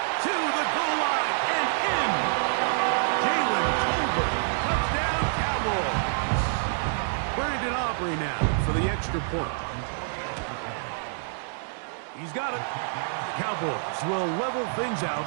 To the goal line and in. Jalen Tolbert. Touchdown, Cowboys. Brandon Aubrey now for the extra point. He's got it. The Cowboys will level things out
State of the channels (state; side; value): silent; left; 60 dB below the other